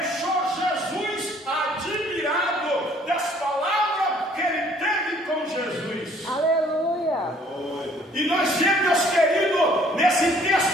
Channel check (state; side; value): normal; both; correlation 0.59